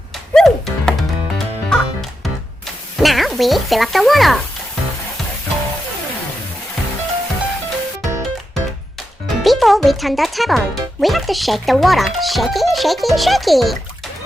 Woo! Oh. Now we fill up the water. Before we turn the tap on, we have to shake the water. Shake it, shake it, shake it.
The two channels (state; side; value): normal; both; correlation 0.87